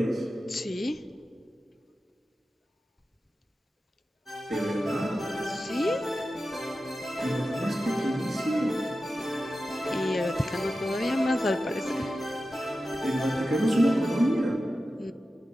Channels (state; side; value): normal; both; correlation 0.93